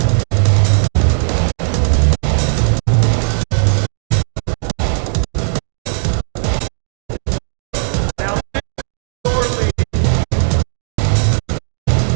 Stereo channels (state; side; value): silent; left; digital silence